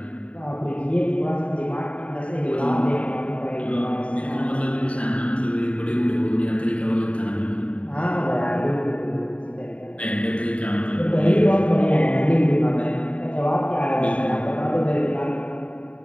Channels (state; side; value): late; right; 0.064 ms